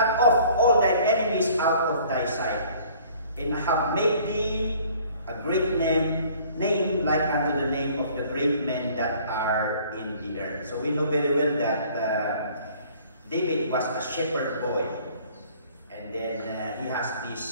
off all thine enemies out of thy sight, and have made thee a great name like unto the name of the great men that are in the earth. So we know very well that David was a shepherd boy, and then he has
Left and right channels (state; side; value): inverted; both; correlation -0.54